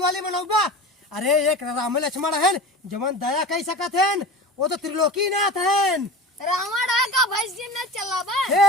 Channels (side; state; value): both; normal; correlation 0.32